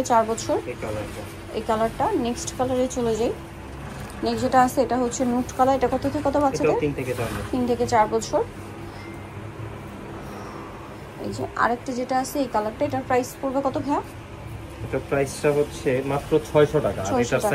4 বছর। এই কালারটা নেক্সট কালারে চলে যাই। নেক্সট যেটা আছে এটা হচ্ছে নুট কালার। এটা কত থেকে কত বাচ্চাদের? এটা 3 থেকে 4 বছর। 3 থেকে 4 বছর। এই যে আরেকটা যেটা আছে এই কালারটা, এটার প্রাইস পড়বে কত ভাইয়া? এটা প্রাইসটা হচ্ছে মাত্র 600 টাকা। আর এটার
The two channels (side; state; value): both; identical; correlation 1.00